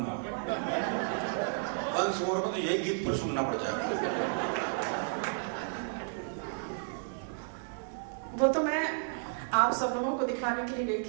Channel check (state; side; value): silent; left; 56 dB below the other